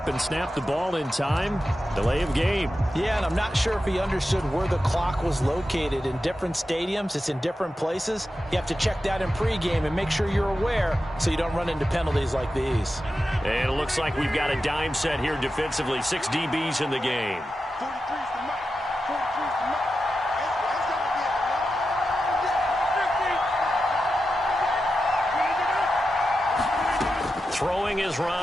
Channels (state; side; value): normal; both; correlation 0.91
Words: and snap the ball in time. Delay of game. Yeah, and I'm not sure if he understood where the clock was located. In different stadiums, it's in different places. You have to check that in pregame and make sure you're aware so you don't run into penalties like these. And it looks like we've got a dime set here defensively. 6 DBs in the game. Throwing is